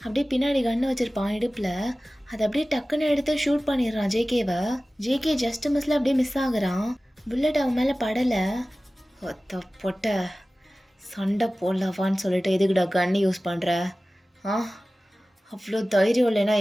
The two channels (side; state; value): both; normal; correlation 0.97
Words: அப்படியே பின்னாடி கன்று வச்சுருப்பான் இடுப்பில். அதை அப்படியே டக்குன்னு எடுத்து ஷூட் பண்ணிடுறான் ஜேகேவை. ஜேகே ஜஸ்ட் மிஸ்ல அப்படியே மிஸ் ஆகுறான். புல்லட் அவன் மேலே படலை. ஒத்த பொட்ட சண்டை போடலாவான்னு சொல்லிட்டு எதுக்குடா கன்று யூஸ் பண்ணுற? அவ்வளோ தைரியம் இல்லைன்னா